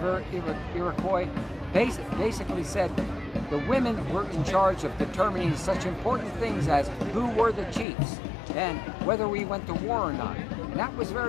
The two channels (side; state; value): right; drops out; at 7.9 s